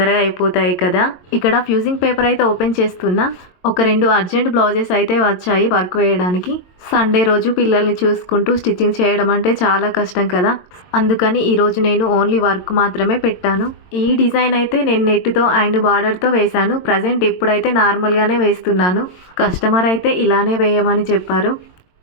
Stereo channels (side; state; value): right; late; 22 ms